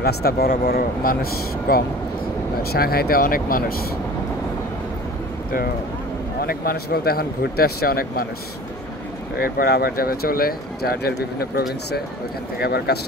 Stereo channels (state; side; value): normal; both; correlation 0.42